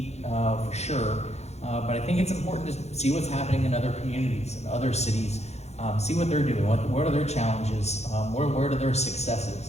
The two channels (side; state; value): right; late; 0.31 ms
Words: for sure, but I think it's important to see what's happening in other communities and other cities. See what they're doing. What are their challenges? Where are their